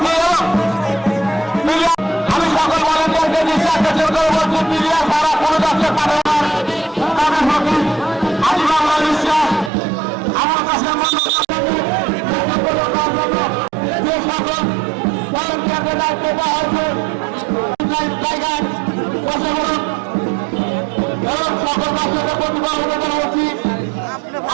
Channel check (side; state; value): left; drops out; at 9.7 s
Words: আমি সকল ভলেন্টিয়ারকে নিঃশ্বাস করে বলছি মিডিয়া সারা কোনো দশের পাঠানোর আমি বাংলা বিশ্বাস আমার কাছে যে সকল ভলেন্টিয়ারদের দায়িত্ব দেওয়া হয়েছে জায়গায় বসে বলুন এবং সকল দর্শকের প্রতিভা অনুদান হচ্ছি